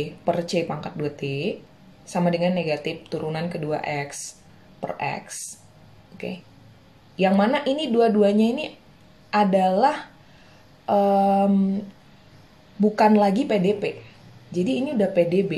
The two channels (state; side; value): identical; both; correlation 1.00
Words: per C pangkat 2T sama dengan negatif turunan kedua X per X. Oke. Yang mana ini dua-duanya ini adalah bukan lagi PDP. Jadi ini udah